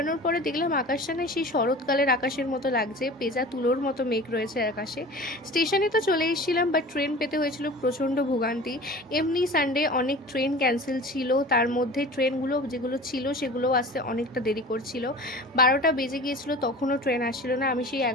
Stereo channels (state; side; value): normal; both; correlation 0.38